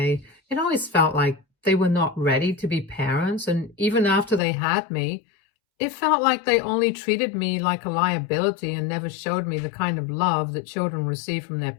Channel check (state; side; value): drops out; right; at 4.4 s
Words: It always felt like they were not ready to be parents, and even after they had me, it felt like they only treated me like a liability and never showed me the kind of love that children receive from their